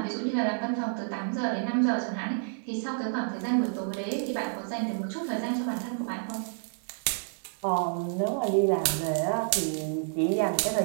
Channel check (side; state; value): left; silent; digital silence